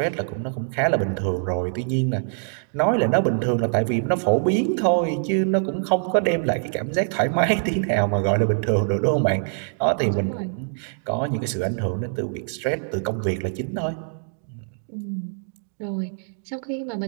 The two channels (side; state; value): left; silent; digital silence